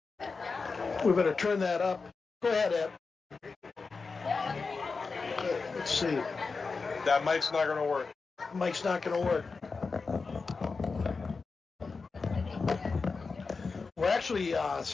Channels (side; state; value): right; quieter; 4.5 dB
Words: We better turn that up. Go ahead, Ed. Okay, let's see. That mic's not going to work. Mic's not going to work. We're actually,